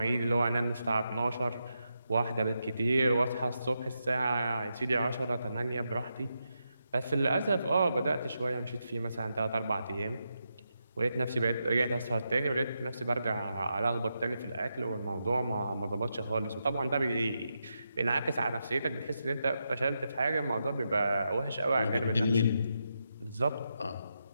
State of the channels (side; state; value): both; inverted; correlation -0.85